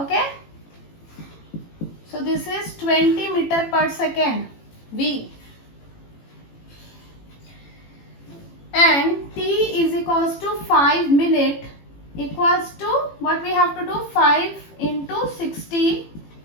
So this is 20 meter per second, V. And T is equals to 5 minute equals to, what we have to do, 5 into 60,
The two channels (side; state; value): right; late; 18 ms